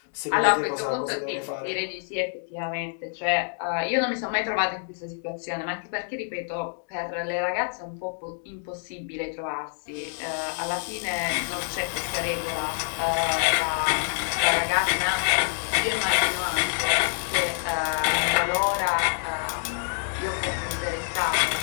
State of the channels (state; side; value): silent; right; digital silence